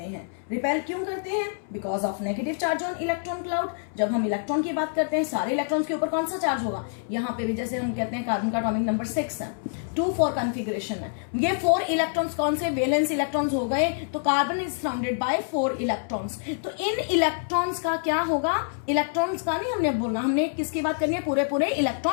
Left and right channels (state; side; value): silent; right; 61 dB below the other